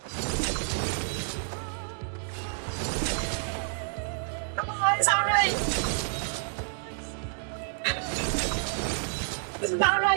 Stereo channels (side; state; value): left; silent; digital silence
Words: Come on, it's alright! This is not